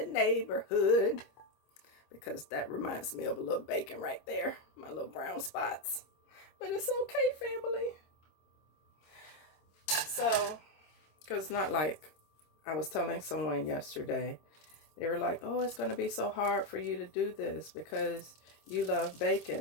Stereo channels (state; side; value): late; right; 25 ms